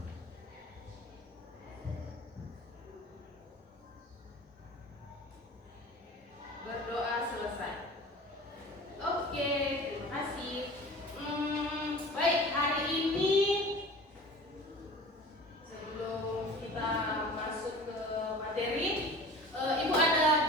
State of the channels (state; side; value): normal; both; correlation 0.40